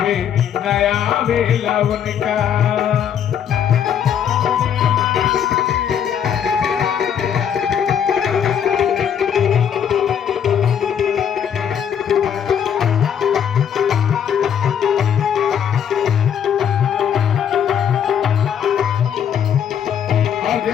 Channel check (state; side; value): quieter; right; 8.6 dB